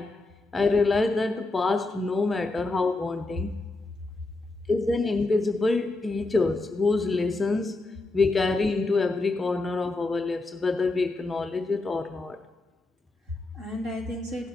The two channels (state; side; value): quieter; right; 3.1 dB